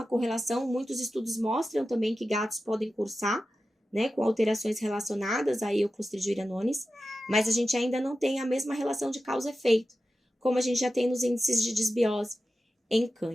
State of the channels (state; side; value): normal; both; correlation 0.93